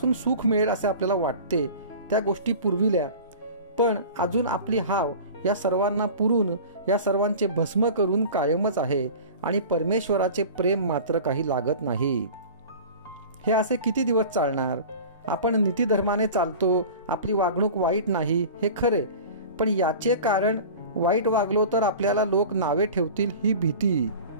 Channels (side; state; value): both; inverted; correlation -0.38